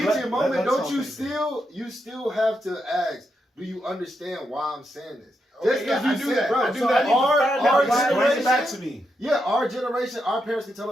let- moment? let's Don't talk you things. you still have to ask? Do you understand why I'm saying this? Okay, yeah, I do that. bro. I do so that. I need to our find out why. Bring it back generation, to me. yeah, our generation, our parents could tell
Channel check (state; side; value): normal; both; correlation 0.83